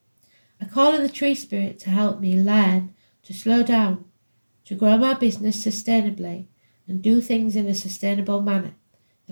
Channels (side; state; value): both; inverted; correlation -1.00